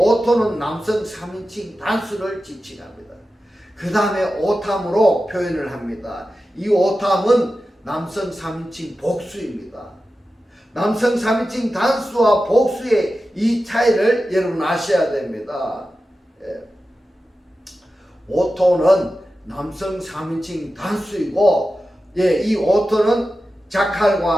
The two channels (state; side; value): normal; both; correlation 0.93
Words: 남성 3인칭 단수를 지칭합니다. 그 다음에 오탐으로 표현을 합니다. 이 오탐은 남성 3인칭 복수입니다. 남성 3인칭 단수와 복수의 이 차이를 여러분 아셔야 됩니다. 오토는 남성 3인칭 단수이고 이 오토는